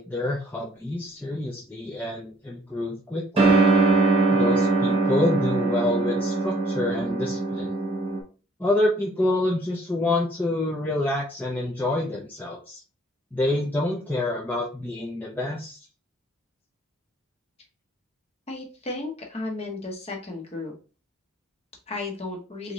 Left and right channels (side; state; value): both; normal; correlation 0.60